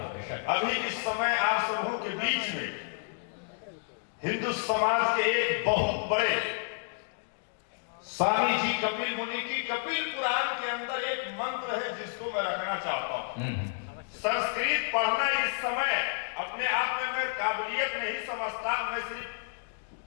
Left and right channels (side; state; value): right; silent; digital silence